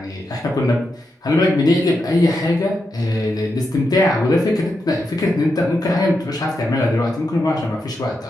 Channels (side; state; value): both; normal; correlation 0.85